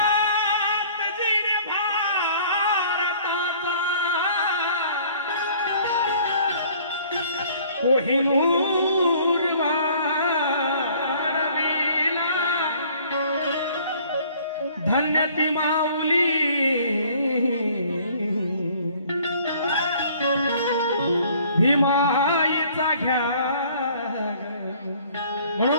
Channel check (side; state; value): both; inverted; correlation -0.55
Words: जिने भारताचा कोहिनूर वाढविला धन्य ती माऊली भीमाईचा घ्या